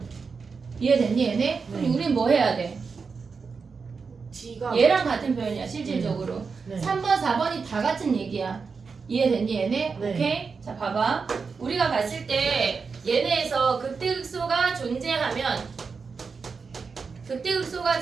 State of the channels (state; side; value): quieter; left; 5.1 dB